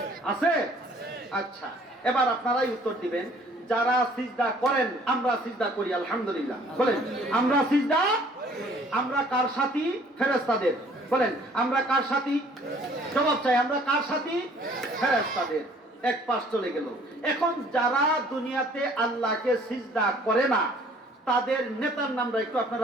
আছে? আচ্ছা, এবার আপনারাই উত্তর দিবেন। যারা সিজদা করেন, আমরা সিজদা করি আলহামদুলিল্লাহ। বলেন আমরা সিজদা, আমরা কার সাথী? ফেরেশতাদের। বলেন আমরা কার সাথী? জবাব চাই, আমরা কার সাথী? ফেরেশতাদের। এক পাশ চলে গেল। এখন যারা দুনিয়াতে আল্লাহকে সিজদা করে না, তাদের নেতার নামটা একটু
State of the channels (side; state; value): both; normal; correlation 0.57